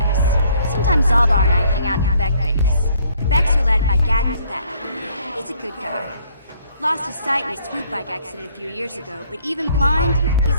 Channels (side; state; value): both; inverted; correlation -0.63